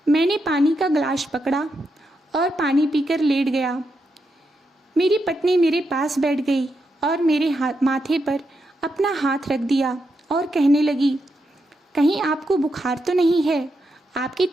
मैंने पानी का गिलास पकड़ा और पानी पीकर लेट गया। मेरी पत्नी मेरे पास बैठ गई और मेरे माथे पर अपना हाथ रख दिया और कहने लगी, कहीं आपको बुखार तो नहीं है? आपकी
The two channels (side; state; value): both; normal; correlation 0.83